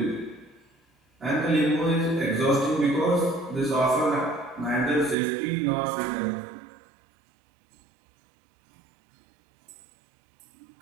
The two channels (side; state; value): left; drops out; at 5.2 s